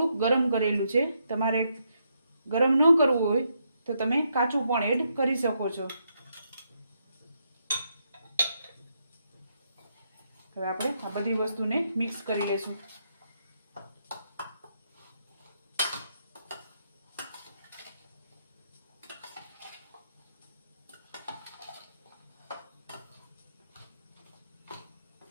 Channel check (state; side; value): inverted; both; correlation -0.78